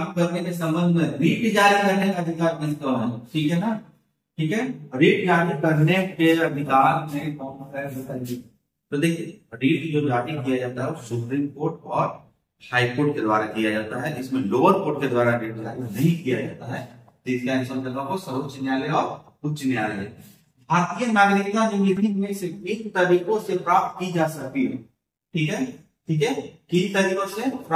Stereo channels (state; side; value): identical; both; correlation 1.00